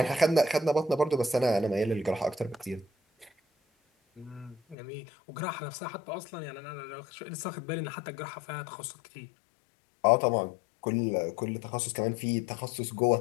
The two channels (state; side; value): drops out; right; at 4.8 s